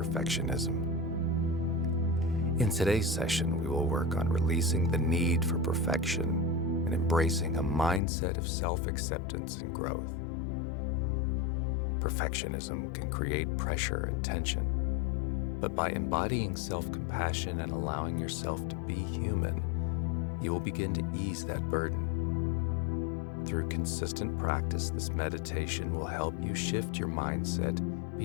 In today's session, we will work on releasing the need for perfection and embracing a mindset of self-acceptance and growth. Perfectionism can create pressure and tension, but by embodying self-compassion and allowing yourself to be human, you will begin to ease that burden. Through consistent practice, this meditation will help you shift your mindset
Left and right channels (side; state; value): right; drops out; at 8.0 s